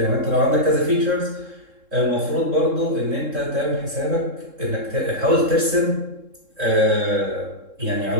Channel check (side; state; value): left; late; 3.7 ms